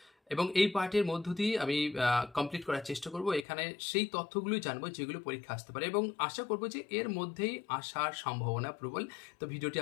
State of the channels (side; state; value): right; drops out; at 3.5 s